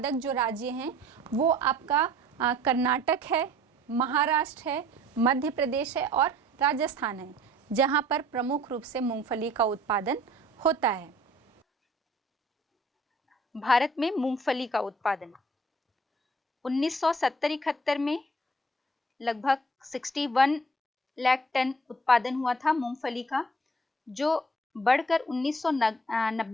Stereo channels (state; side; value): normal; both; correlation 0.54